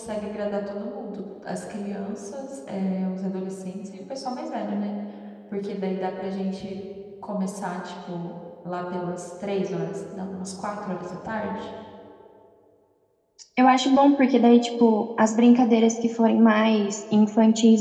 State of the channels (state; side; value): identical; both; correlation 1.00